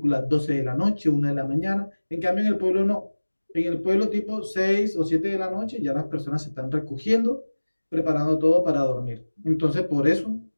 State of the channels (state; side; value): inverted; both; correlation -1.00